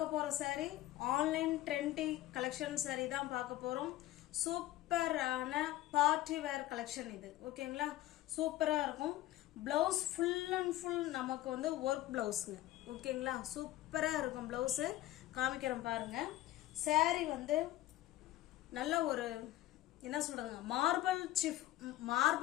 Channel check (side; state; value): right; quieter; 15.3 dB